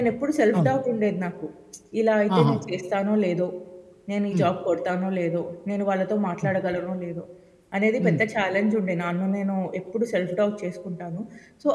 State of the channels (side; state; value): both; identical; correlation 1.00